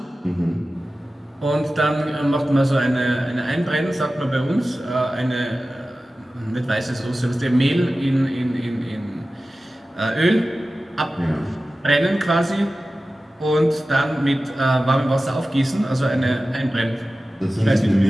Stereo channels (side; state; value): both; normal; correlation 0.95